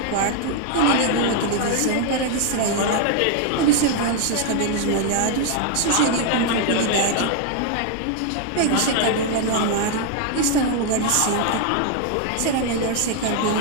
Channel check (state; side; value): different; both; correlation 0.00